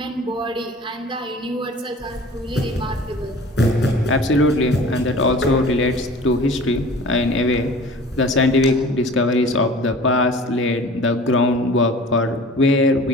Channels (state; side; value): normal; both; correlation 0.43